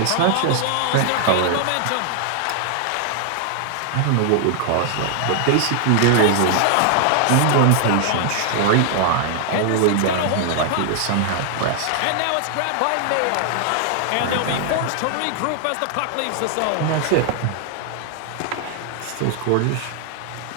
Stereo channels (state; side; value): different; both; correlation 0.00